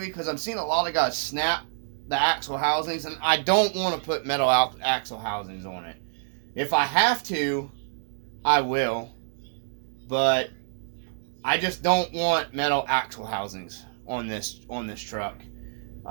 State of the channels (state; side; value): silent; left; digital silence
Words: because I'm seeing a lot of guys snap the axle housings, and I don't want to put metal axle housings on it. If I have to, I will, but I just don't want metal axle housings on this truck.